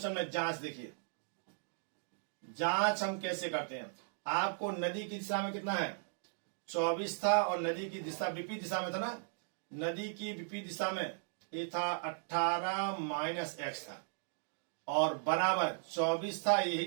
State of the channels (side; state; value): left; silent; digital silence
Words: में, जांच देखिए। जांच हम कैसे करते हैं, आपको नदी की दिशा में कितना है 24 था और नदी की दिशा विपरीत दिशा में था ना, नदी की विपरीत दिशा में ये था 18 माइनस x था और बराबर 24 था,